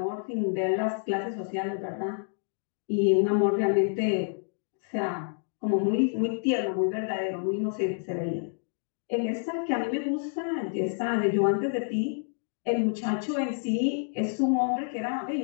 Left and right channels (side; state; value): right; silent; 59 dB below the other